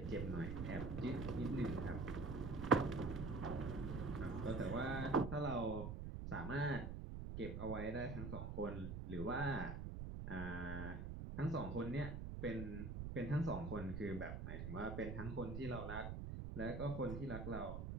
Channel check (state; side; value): noise; right; rumble, 5 dB below the sound